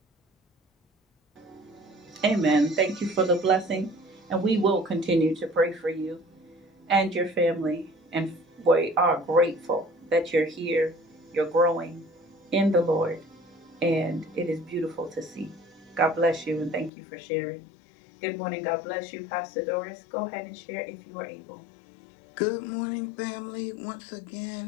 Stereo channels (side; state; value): right; drops out; at 16.9 s